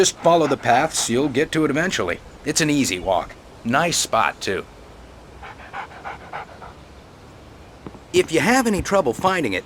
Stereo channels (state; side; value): identical; both; correlation 1.00